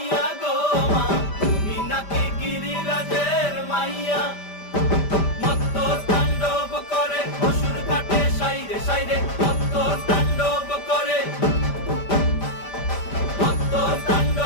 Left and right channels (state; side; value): late; right; 5.1 ms